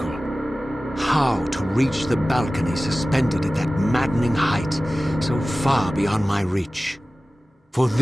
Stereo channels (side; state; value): both; normal; correlation 0.97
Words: how to reach the balcony suspended at that maddening height, so far beyond my reach. For